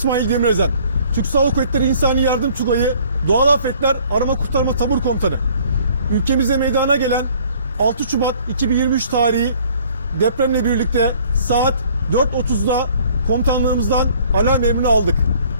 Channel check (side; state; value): both; inverted; correlation -0.56